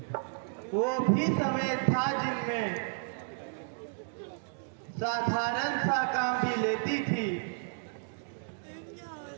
वो भी समय था जिनमें साधारण सा काम भी लेती थी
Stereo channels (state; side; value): silent; left; digital silence